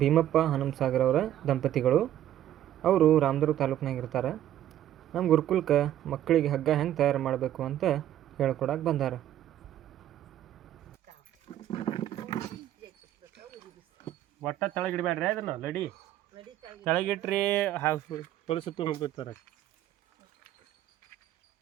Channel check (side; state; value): left; quieter; 12.0 dB